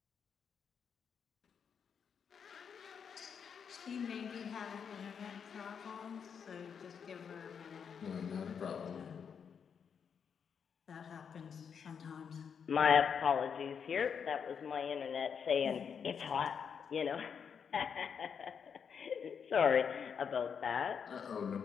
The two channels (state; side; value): quieter; right; 6.9 dB